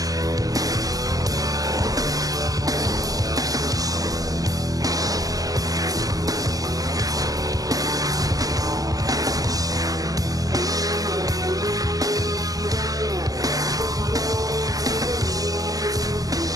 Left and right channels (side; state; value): left; late; 0.17 ms